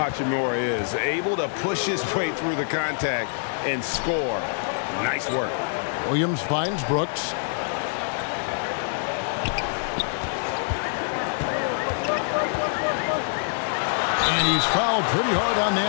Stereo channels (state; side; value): silent; right; 62 dB below the other